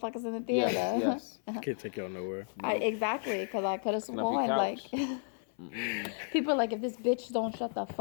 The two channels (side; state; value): right; silent; 56 dB below the other